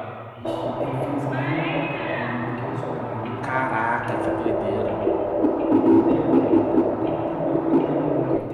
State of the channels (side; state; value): both; identical; correlation 1.00